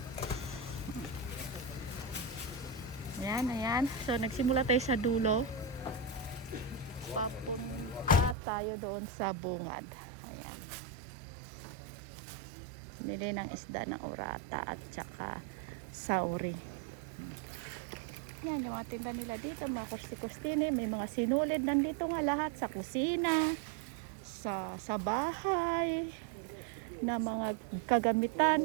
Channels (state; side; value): drops out; left; at 8.3 s